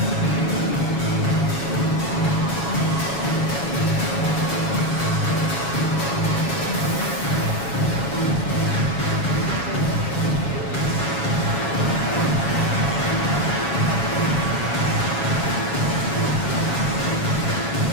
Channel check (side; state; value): right; late; 7.2 ms